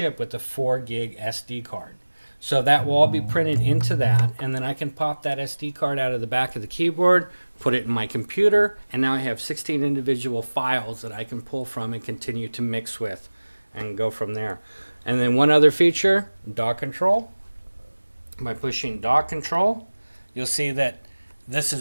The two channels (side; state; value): both; inverted; correlation -1.00